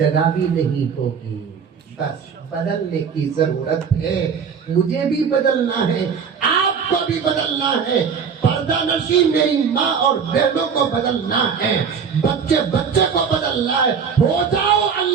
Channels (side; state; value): left; quieter; 6.5 dB